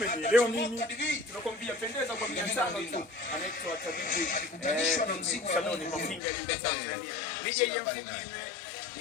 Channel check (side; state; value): right; drops out; at 6.2 s